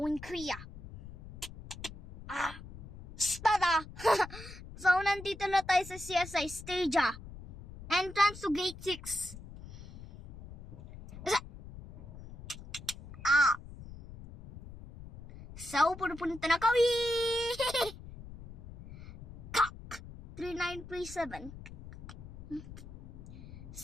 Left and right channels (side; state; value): left; noise; rumble, 15 dB below the sound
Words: Korea. Stada! So, nandito na tayo sa CSI stage Entrance to gate 6. So, pupunta na kami! Kak! 3937.